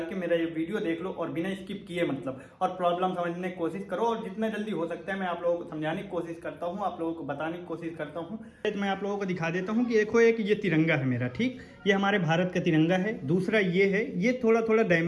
के मेरा ये वीडियो देख लो और बिना स्किप किए मतलब, और प्रॉब्लम समझने की कोशिश करो, और जितना जल्दी हो सकता है मैं आप लोगों को समझाने की कोशिश करता हूँ, आप लोगों को बताने की कोशिश करता हूँ। मैं आप लोगों को दिखा देता हूँ कि देखो, एक ये तिरंगा है मेरा, ठीक, ये हमारे भारत का तिरंगा है। दूसरा ये है, ये थोड़ा थोड़ा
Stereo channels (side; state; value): both; identical; correlation 1.00